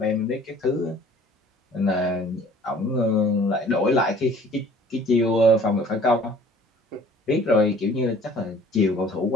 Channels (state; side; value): normal; both; correlation 0.51